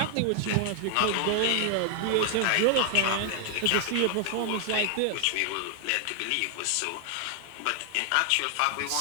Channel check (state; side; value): different; both; correlation 0.00